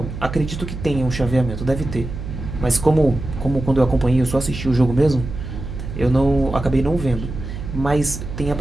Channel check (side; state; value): right; noise; hum, 8 dB below the sound